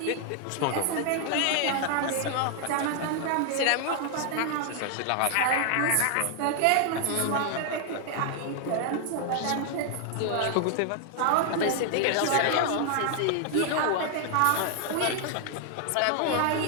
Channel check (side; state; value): both; different; correlation 0.00